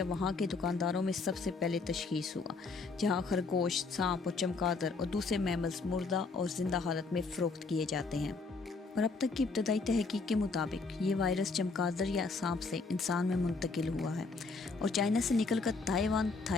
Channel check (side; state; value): right; quieter; 4.1 dB